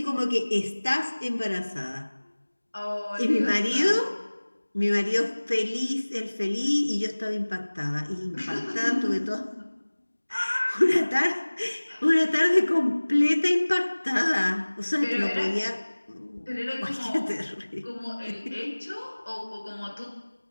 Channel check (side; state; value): both; inverted; correlation -1.00